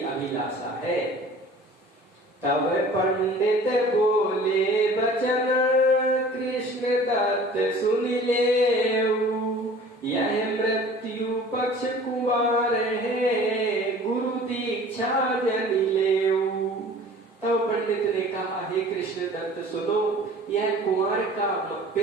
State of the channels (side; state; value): both; normal; correlation 0.46